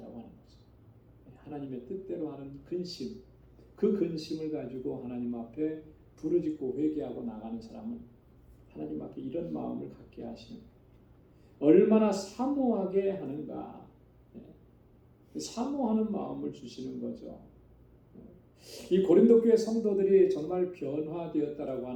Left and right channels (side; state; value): both; identical; correlation 1.00